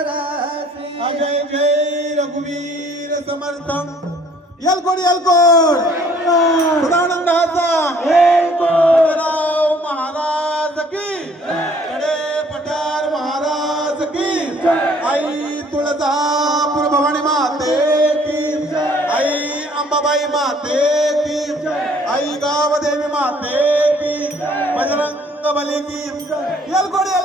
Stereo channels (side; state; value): both; normal; correlation 0.58